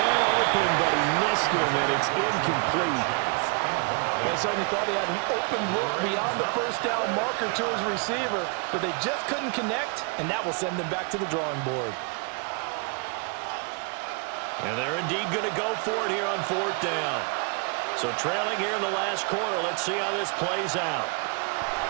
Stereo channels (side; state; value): left; quieter; 34.7 dB